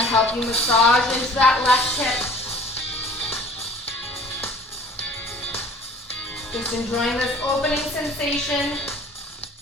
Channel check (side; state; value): both; normal; correlation 0.48